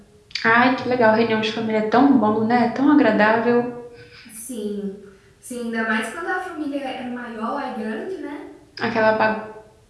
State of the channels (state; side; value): identical; both; correlation 1.00